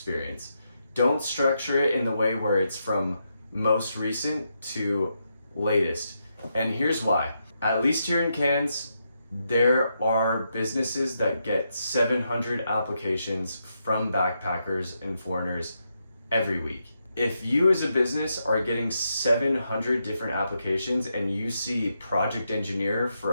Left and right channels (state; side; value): inverted; both; correlation -0.82